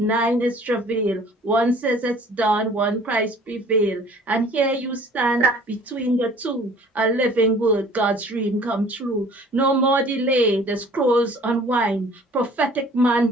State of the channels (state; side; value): normal; both; correlation 0.51